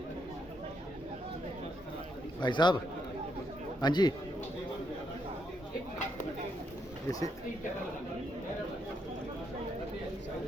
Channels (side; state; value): both; normal; correlation 0.77